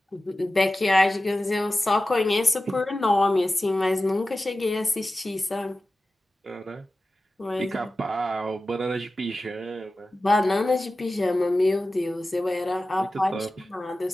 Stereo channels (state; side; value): normal; both; correlation 0.95